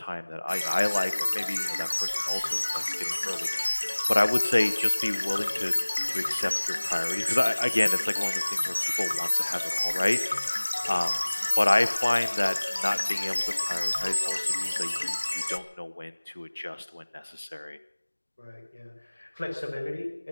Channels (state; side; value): inverted; both; correlation -1.00